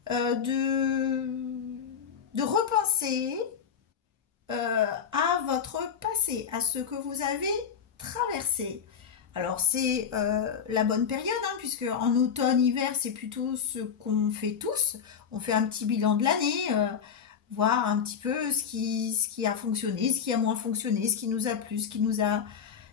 de repenser à votre passé, à ce que vous avez traversé. Alors c'est la bonne période, hein, puisque en automne-hiver, c'est plutôt ce qu'on fait tous. On fait un petit bilan de l'année, voir un petit peu ce qui a fonctionné, ce qui a moins fonctionné, ce qui nous a plu, ce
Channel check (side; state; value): right; quieter; 7.3 dB